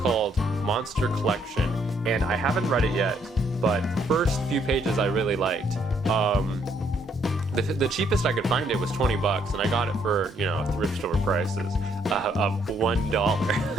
Monster Collection, and I haven't read it yet, but the first few pages I really liked. The cheapest I could find it was $20, and I got it for, thrift store prices of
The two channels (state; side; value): normal; both; correlation 0.69